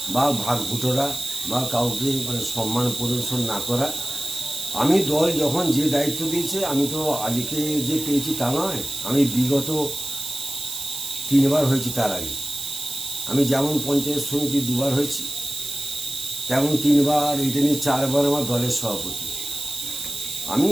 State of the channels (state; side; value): noise; right; hiss, 7 dB below the sound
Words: বা ভাগভুটোরা বা কাউকে সম্মান প্রদর্শন না করা। আমি দল যখন যে দায়িত্ব দিয়েছে, আমি তো আজকে যে পেয়েছি তা নয়, আমি বিগত 3 বার হয়েছি। তার আগে আমি যেমন পঞ্চায়েত সমিতি 2 বার হয়েছি, তেমন 3 বার, এটা নিয়ে 4 বার আমার দলের সভাপতি। আমি